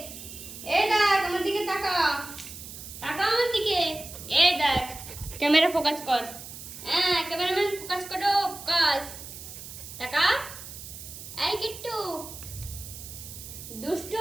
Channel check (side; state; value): right; noise; hiss, 12 dB below the sound